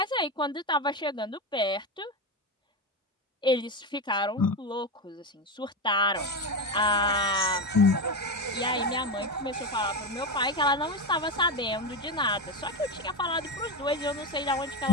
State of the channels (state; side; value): normal; both; correlation 0.15